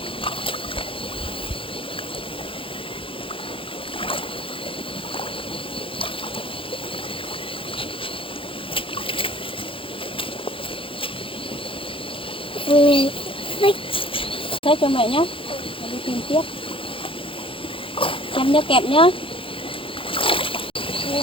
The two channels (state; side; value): late; right; 0.26 ms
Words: Thế cho mẹ nhé, đi tìm tiếp. Xem nhớ kẹp nhá.